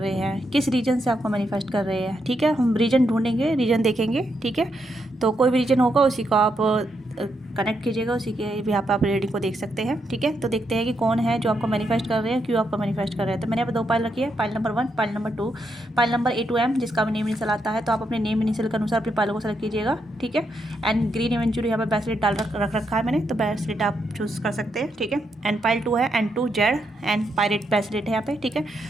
हैं, किस रीजन से आपको मैनिफेस्ट कर रहे हैं। ठीक है, हम रीजन ढूंढेंगे, रीजन देखेंगे। ठीक है, तो कोई भी रीजन होगा उसी को आप कनेक्ट कीजिएगा, उसी के भी आप रीडिंग को देख सकते हैं। ठीक है, तो देखते हैं कि कौन है जो आपको मैनिफेस्ट कर रहे हैं, क्यों आपको मैनिफेस्ट कर रहे हैं। तो मैंने यहाँ पे 2 पाइल रखी है, pile number 1, pile number 2, pile number A to M, जिसका भी नेम इनिशियल आता है। तो आप अपने नेम इनिशियल के अनुसार अपनी पाइलों को सेलेक्ट कीजिएगा। ठीक है, एंड ग्रीन इवेंचुअली यहाँ पे ब्रेसलेट डाल रख रखा है मैंने, तो ब्रेसलेट आप चूज़ कर सकते हैं। ठीक है, एंड पाइल 2 है, and 2 Z and pirate bracelet है यहाँ पे। ठीक है,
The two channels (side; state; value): both; normal; correlation 0.80